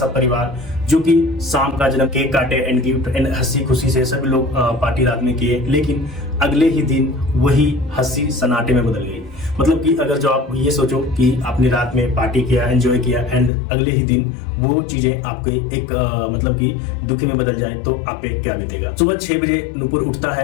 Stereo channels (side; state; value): right; drops out; at 13.5 s